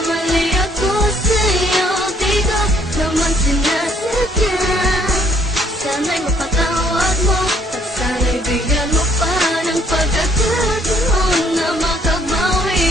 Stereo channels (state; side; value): normal; both; correlation 0.64